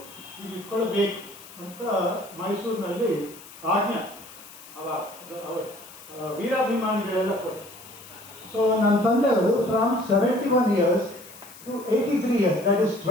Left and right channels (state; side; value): noise; left; hiss, 19 dB below the sound